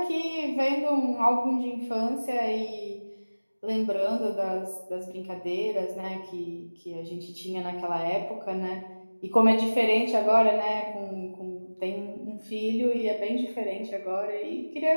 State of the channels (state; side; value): inverted; both; correlation -1.00